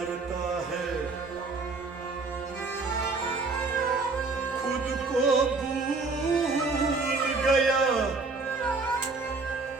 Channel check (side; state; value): left; quieter; 3.9 dB